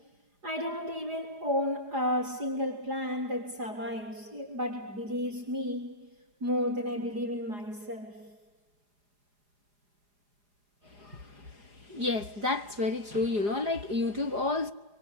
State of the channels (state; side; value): late; left; 4.9 ms